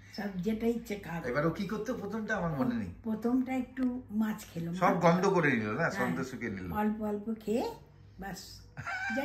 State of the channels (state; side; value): identical; both; correlation 1.00